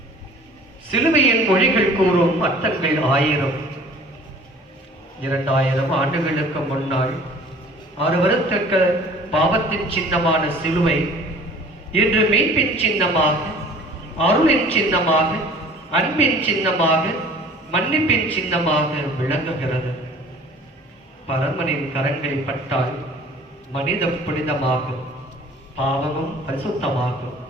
சிலுவையின் மொழிகள் கூறும் அர்த்தங்கள் 1000. 2000 ஆண்டுகளுக்கு முன்னால் 6 வருத்தக்க பாவத்தின் சின்னமான சிலுவை இன்று மீட்பின் சின்னமாக, அருளின் சின்னமாக, அன்பின் சின்னமாக, மன்னிப்பின் சின்னமாக விளங்குகிறது. பரமனின் கரங்கள் பட்டால் மனிதம் புனிதமாகும், பாவமும் பரிசுத்தமாகும்.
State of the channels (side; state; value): both; normal; correlation 0.48